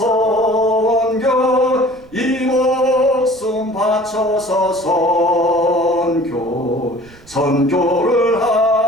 이 목숨 바쳐서 선교, 선교를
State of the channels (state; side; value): noise; right; rumble, 25 dB below the sound